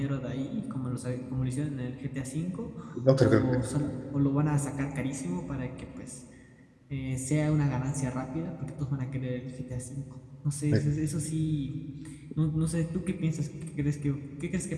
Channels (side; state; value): both; identical; correlation 1.00